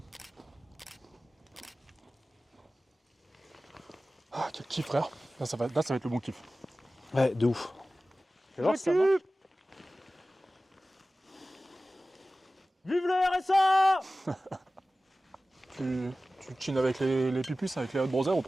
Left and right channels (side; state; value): both; normal; correlation 0.96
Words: Ah, Quel kiff, frère. Là, ça va être le bon kiff. Ouais, de ouf. Fais voir si ça marche. Vive le RSA! Tu chines avec les pupus, avec les Hot Brothers ou